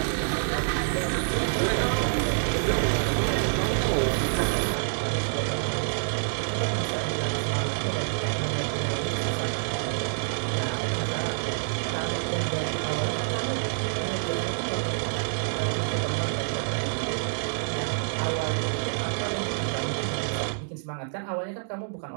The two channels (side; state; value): left; silent; digital silence